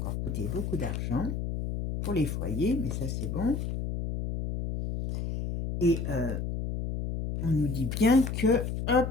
coûter beaucoup d'argent pour les foyers, mais ça, c'est bon. Et on nous dit bien que, hop,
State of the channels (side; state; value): left; noise; hum, 3 dB below the sound